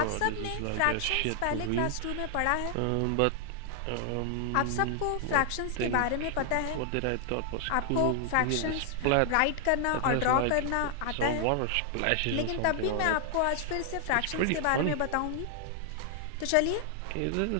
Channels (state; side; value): different; both; correlation 0.00